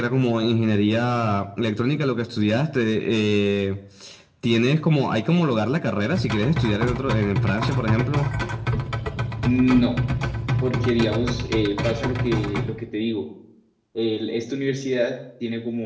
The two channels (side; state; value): both; identical; correlation 1.00